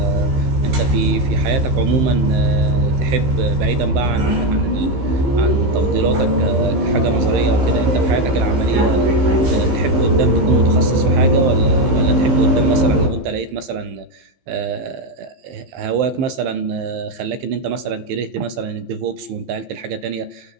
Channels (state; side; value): late; left; 15 ms